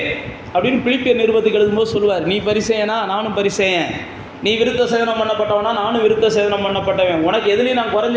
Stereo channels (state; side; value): identical; both; correlation 1.00